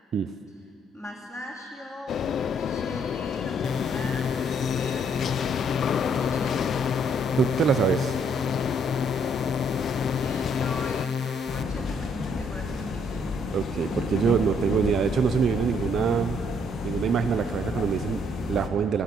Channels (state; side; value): normal; both; correlation 0.68